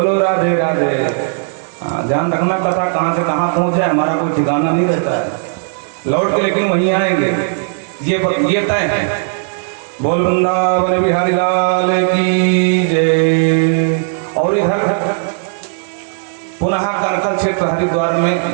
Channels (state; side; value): silent; left; digital silence